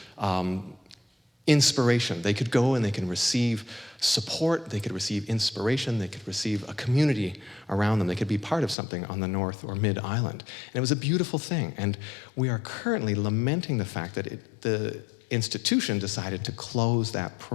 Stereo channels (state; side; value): drops out; right; at 8.8 s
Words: inspiration. They could go and they can receive support, they could receive inspiration, they could receive a community around them. They could be part of something on the North or Mid-Island. And it was a beautiful thing. And we are currently lamenting the fact that the institution decided to close that